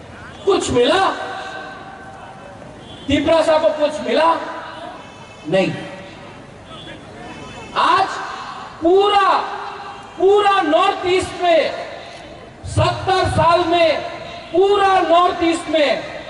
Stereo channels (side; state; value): both; identical; correlation 1.00